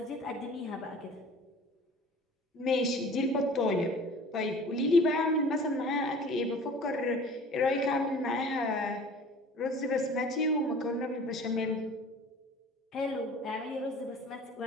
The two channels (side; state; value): both; normal; correlation 0.45